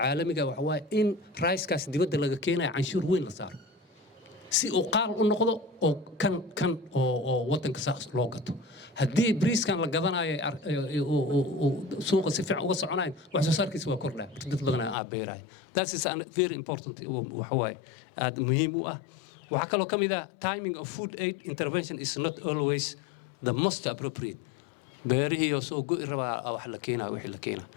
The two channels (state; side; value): drops out; right; at 15.0 s